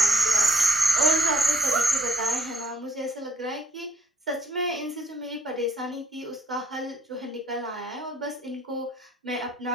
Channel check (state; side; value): normal; both; correlation 0.63